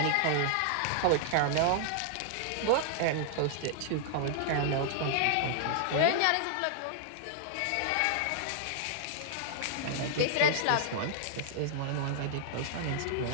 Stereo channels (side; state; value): both; different; correlation -0.01